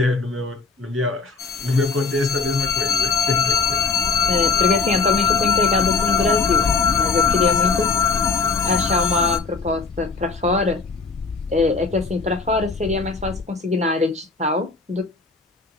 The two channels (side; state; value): right; quieter; 4.5 dB